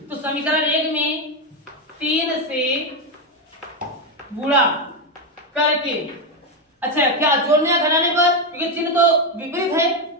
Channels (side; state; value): both; normal; correlation 0.07